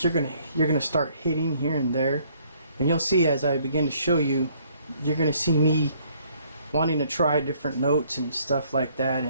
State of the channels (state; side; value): inverted; both; correlation -0.64